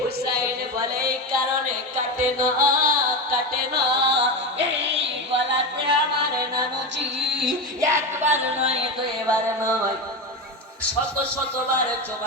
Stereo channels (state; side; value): normal; both; correlation 0.18